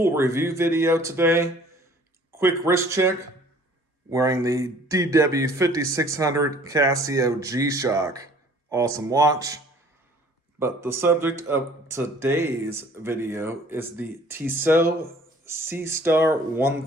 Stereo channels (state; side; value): normal; both; correlation 0.53